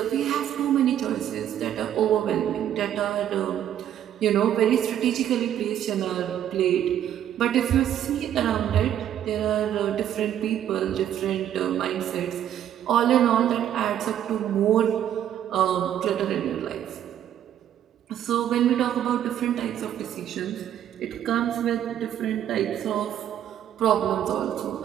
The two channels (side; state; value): left; quieter; 10.6 dB